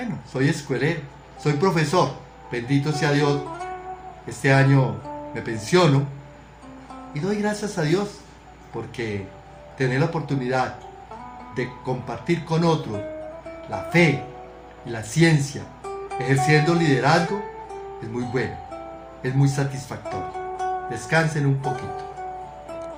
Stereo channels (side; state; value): both; identical; correlation 1.00